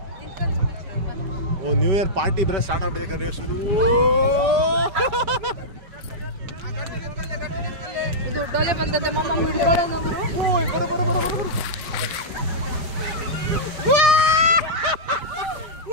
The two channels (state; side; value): late; left; 4.9 ms